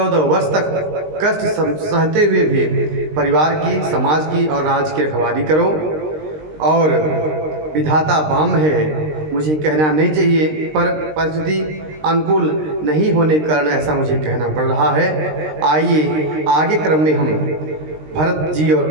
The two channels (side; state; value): left; late; 19 ms